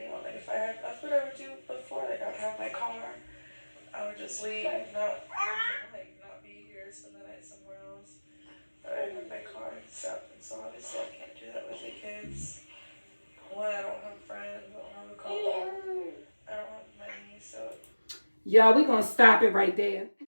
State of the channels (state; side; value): inverted; both; correlation -1.00